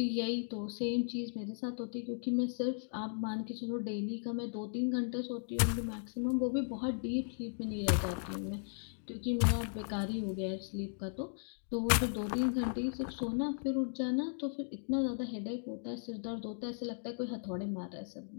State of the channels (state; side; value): silent; right; digital silence